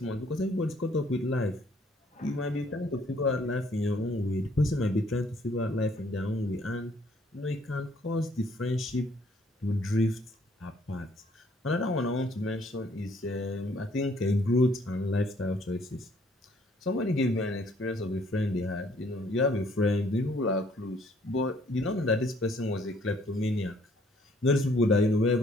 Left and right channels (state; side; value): normal; both; correlation 0.63